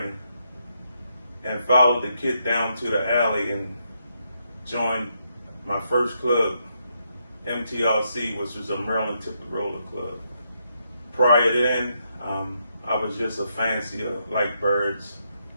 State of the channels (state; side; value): inverted; both; correlation -0.79